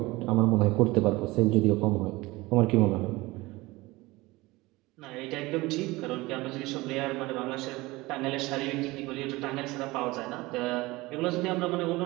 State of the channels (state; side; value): quieter; left; 21.1 dB